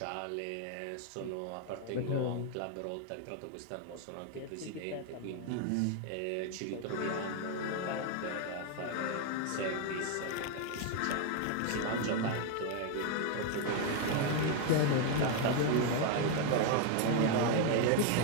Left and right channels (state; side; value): different; both; correlation 0.01